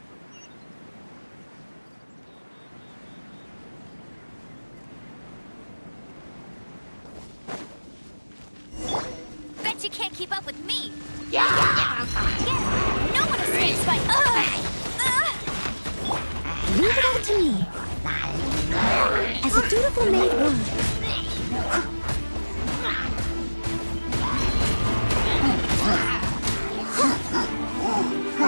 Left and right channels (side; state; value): both; inverted; correlation -1.00